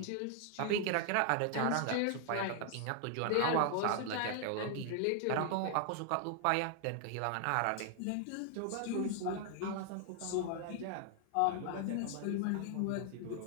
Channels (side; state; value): both; different; correlation 0.00